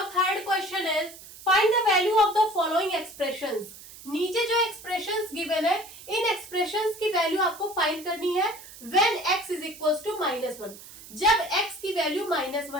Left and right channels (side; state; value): right; noise; hiss, 17 dB below the sound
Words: third question is find the value of the following expressions. नीचे जो एक्सप्रेशंस गिवन है, इन एक्सप्रेशंस की वैल्यू आपको फाइंड करनी है when x is equals to -1, जब x की वैल्यू